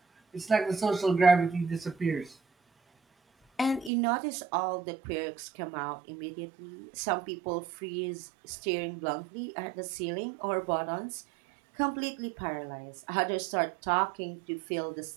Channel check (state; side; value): drops out; left; at 3.9 s